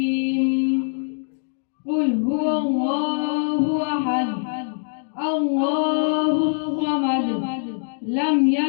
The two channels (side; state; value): right; silent; digital silence